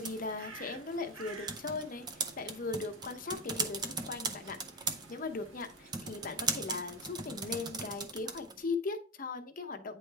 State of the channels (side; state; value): both; normal; correlation 0.16